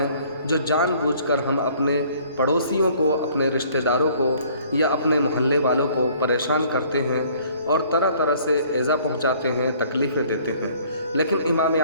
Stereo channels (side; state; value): both; inverted; correlation -0.57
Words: جو جان بوجھ کر ہم اپنے پڑوسیوں کو، اپنے رشتہ داروں کو یا اپنے محلے والوں کو پریشان کرتے ہیں اور طرح طرح سے ایذا پہنچاتے ہیں، تکلیفیں دیتے ہیں۔ لیکن امام